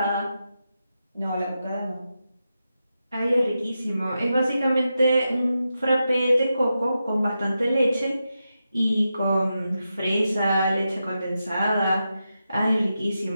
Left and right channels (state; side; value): inverted; both; correlation -0.88